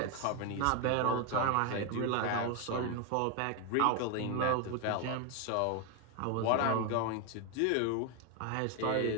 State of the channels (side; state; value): both; different; correlation 0.01